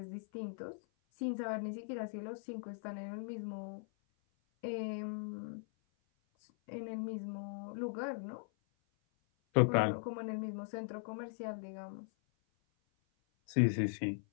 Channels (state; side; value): silent; right; 51 dB below the other